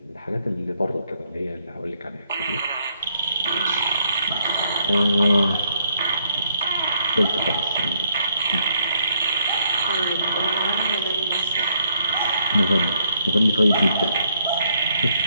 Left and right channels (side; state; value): both; inverted; correlation -0.72